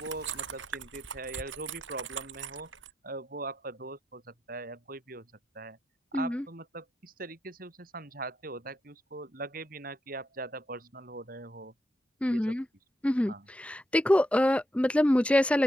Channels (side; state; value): both; normal; correlation 0.83